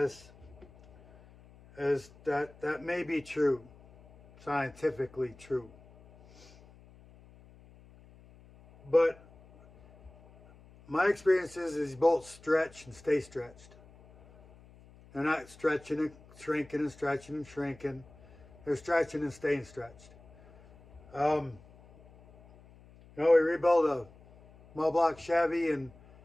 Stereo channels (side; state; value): left; noise; hum, 24 dB below the sound